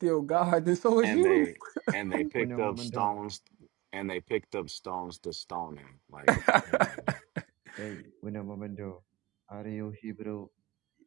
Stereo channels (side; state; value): left; quieter; 21.8 dB